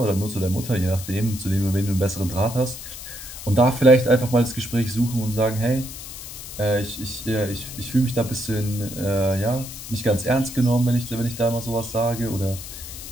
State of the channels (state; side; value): noise; left; hiss, 11 dB below the sound